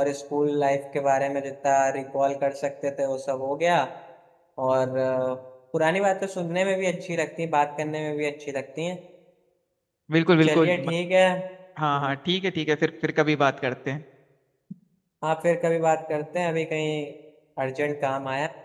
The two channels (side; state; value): both; identical; correlation 1.00